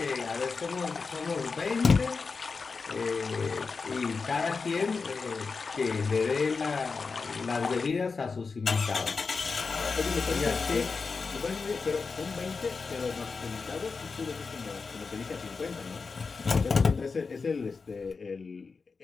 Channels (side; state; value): right; quieter; 4.7 dB